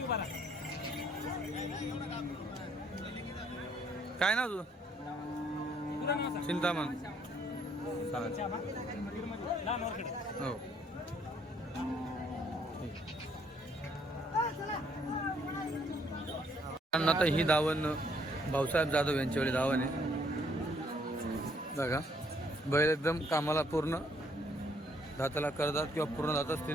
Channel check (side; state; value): both; normal; correlation 0.67